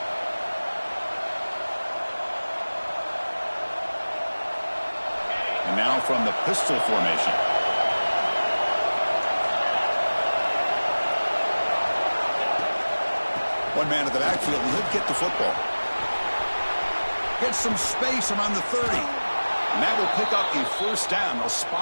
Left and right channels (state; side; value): inverted; both; correlation -1.00